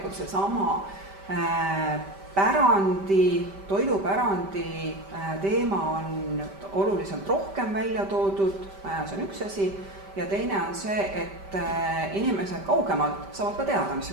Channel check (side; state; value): left; late; 5.1 ms